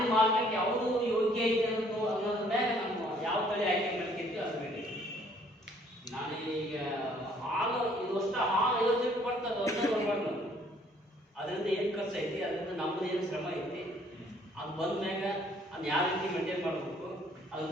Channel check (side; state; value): both; normal; correlation 0.61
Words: ಮಾರ್ಕೆಟ್ ಯಾವುದು ಯೋಗ್ಯ ಐತೆ ಅನ್ನೋದ್ರ ಮೇಲೆ ನಮ್ಮ ಯಾವ ತಳಿ ಆಯ್ಕೆ ಮಾಡ್ತಿರ್ತೀವಿ ಅದ್ರ ಮೇಲೆ. ನಾನು ಈಗ ಹಾಲು ಇದು ಅಷ್ಟು ಹಾಲು 50 ಲೀಟರ್ ಬರ್ತದೆ, ಒಂದೇ ನೋಡ್ಬಾರ್ದು. ಅದರಿಂದ ಏನು ಖರ್ಚು ಐತಿ, ಅದರಿಂದ ನಮ್ಮದು ಏನು ಶ್ರಮ ಐತಿ, ಅದು ಅದು ಬಂದ್ಮ್ಯಾಗ ಅದನ್ನ ಯಾವ ರೀತಿ ಮೇಂಟೈನ್ ಮಾಡಬೇಕು ಅದು